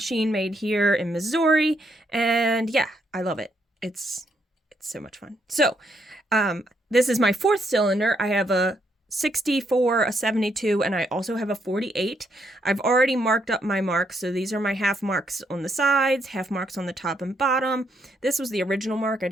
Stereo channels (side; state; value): both; normal; correlation 0.75